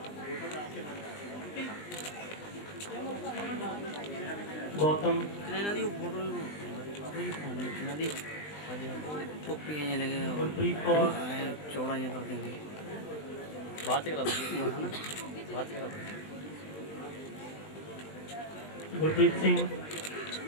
Gautam, टोपियाँ लगे गुरप्रीत कौर, चौड़ा कर देंगे बात करा बात करा गुरप्रीत सिंह,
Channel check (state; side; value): late; right; 20 ms